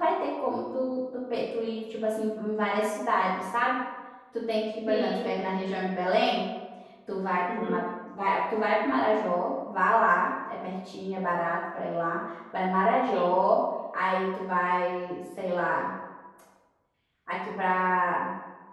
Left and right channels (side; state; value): both; identical; correlation 1.00